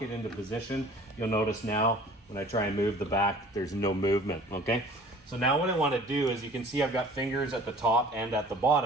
it into position. You'll notice now when I try and move the back, there's no movement, okay? So now what I want to do is, you can see I've got fingers at the top and at the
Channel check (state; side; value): normal; both; correlation 0.48